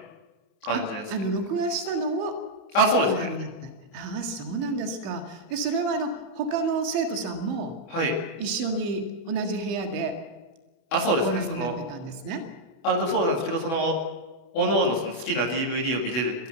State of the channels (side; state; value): right; late; 24 ms